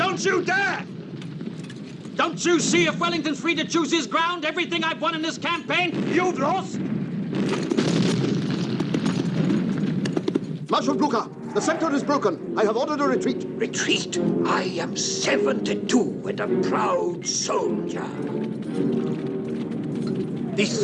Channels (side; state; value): both; identical; correlation 1.00